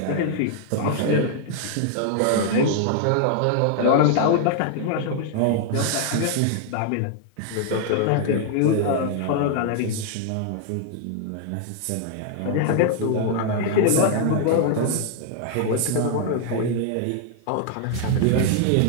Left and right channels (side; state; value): both; different; correlation 0.00